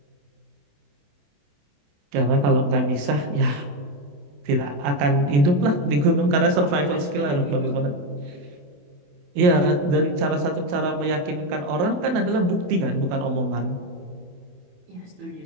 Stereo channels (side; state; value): left; late; 28 ms